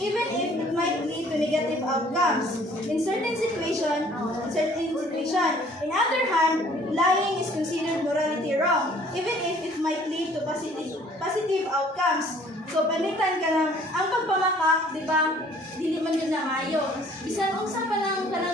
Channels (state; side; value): normal; both; correlation 0.56